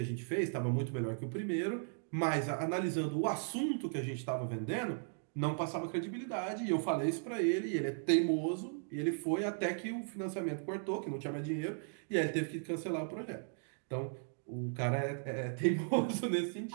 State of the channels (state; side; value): silent; left; digital silence